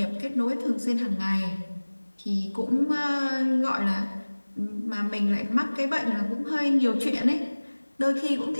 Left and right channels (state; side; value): inverted; both; correlation -1.00